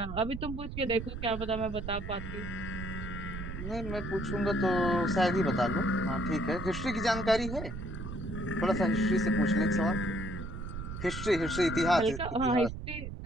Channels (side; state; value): right; noise; rumble, 7 dB below the sound